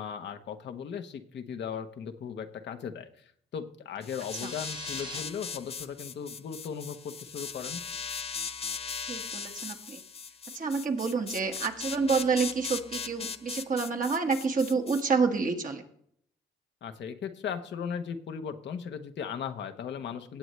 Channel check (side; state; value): both; normal; correlation 0.51